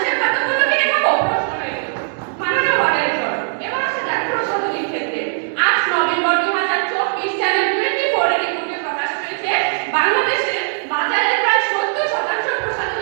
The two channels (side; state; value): left; silent; 65 dB below the other